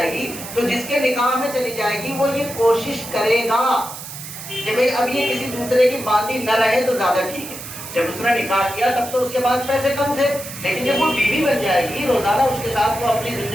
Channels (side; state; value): right; noise; hiss, 11 dB below the sound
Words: گی تو جس کے نکاح میں چلی جائے گی وہ یہ کوشش کرے گا کہ بھئی اب یہ کسی دوسرے کی باندی نہ رہے تو زیادہ ٹھیک ہے۔ جب اس نے نکاح کیا تب تو اس کے پاس پیسے کم تھے، لیکن جب وہ بیوی بن جائے گی، روزانہ اس کے ساتھ وہ اپنی